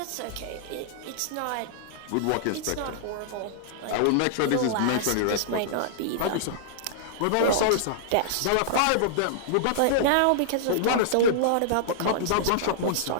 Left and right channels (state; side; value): different; both; correlation -0.02